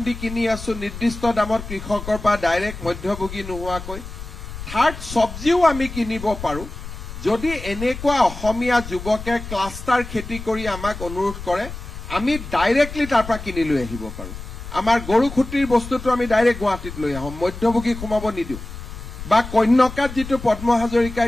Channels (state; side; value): noise; left; rumble, 11 dB below the sound